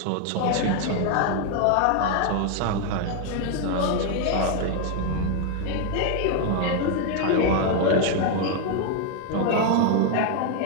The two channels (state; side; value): different; both; correlation 0.00